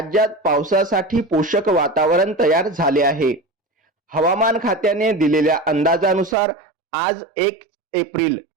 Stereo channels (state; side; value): drops out; left; at 6.4 s